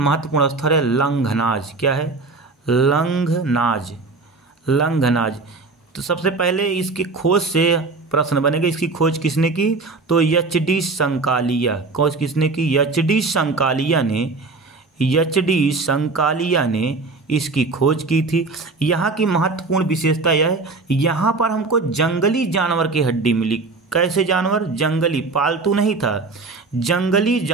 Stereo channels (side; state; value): left; quieter; 3.8 dB